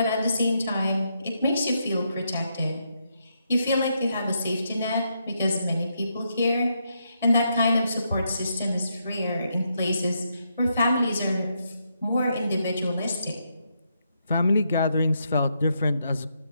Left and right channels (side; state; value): both; inverted; correlation -0.79